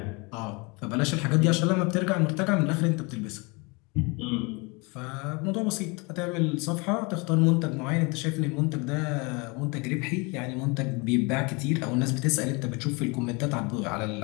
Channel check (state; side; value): quieter; right; 28.7 dB